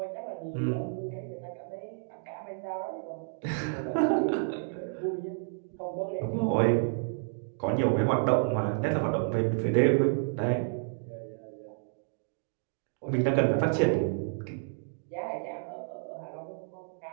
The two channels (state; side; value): silent; left; digital silence